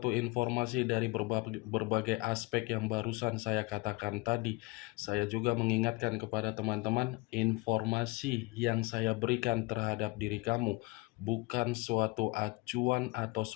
informasi dari berbagai aspek yang barusan saya katakan tadi, saya juga mengingatkan kepada teman-teman, informasi yang saya berikan terhadap diri kamu bukan suatu acuan atau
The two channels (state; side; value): quieter; right; 23.5 dB